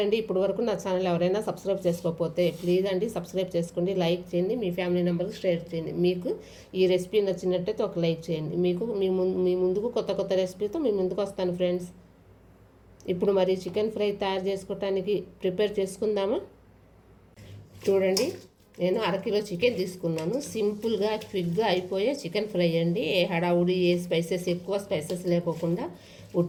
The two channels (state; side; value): identical; both; correlation 1.00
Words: ఇప్పటి వరకు నా ఛానల్ ఎవరైనా సబ్స్క్రైబ్ చేసుకోకపోతే ప్లీజ్ అండి సబ్స్క్రైబ్ చేసుకోండి, లైక్ చేయండి, మీ ఫ్యామిలీ మెంబర్కి షేర్ చేయండి. మీకు ఈ రెసిపీ నచ్చినట్టయితే ఒక లైక్ చేయండి. మీ ముందుకు కొత్త కొత్త రెసిపీతో మీ ముందుకు వస్తాను ఫ్రెండ్స్. ఇప్పుడు మరి చికెన్ ఫ్రై తయారు చేసుకోవటానికి ప్రిపేర్ చేసుకుందామా? చూడండి, నేను అరకిలో చికెన్ తీసుకున్నాను. సింపుల్గా క్విక్గా అయిపోయే చికెన్ ఫ్రై అండి. ఏ హడావుడి, ఏ స్పైసెస్, ఎక్కువ స్పైసెస్ లేకోకుండా